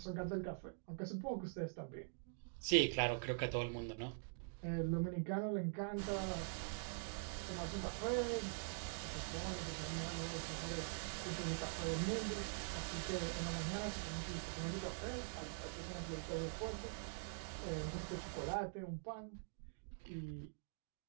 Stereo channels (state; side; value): silent; left; digital silence